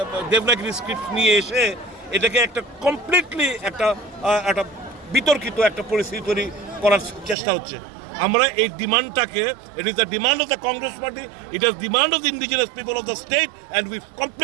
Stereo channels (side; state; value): left; drops out; at 7.4 s